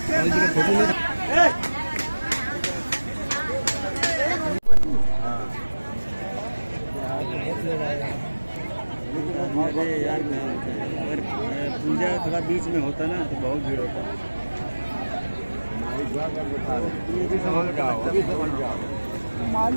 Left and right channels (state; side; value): inverted; both; correlation -1.00